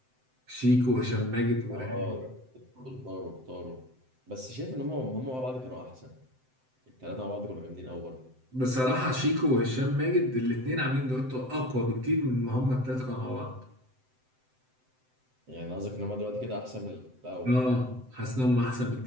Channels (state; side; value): late; left; 7.8 ms